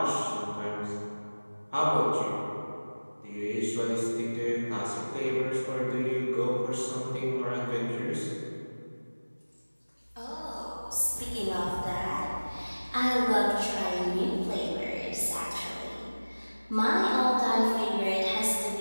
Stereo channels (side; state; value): both; inverted; correlation -1.00